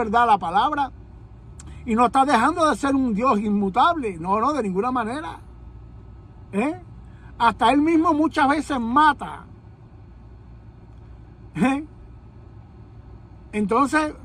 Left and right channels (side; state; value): both; identical; correlation 1.00